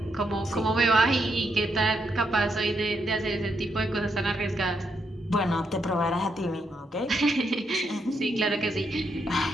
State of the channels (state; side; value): normal; both; correlation 0.79